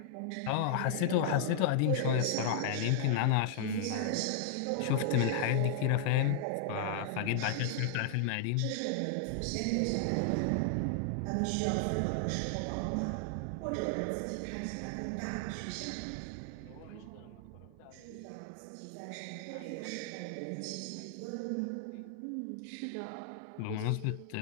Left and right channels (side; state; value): both; different; correlation -0.01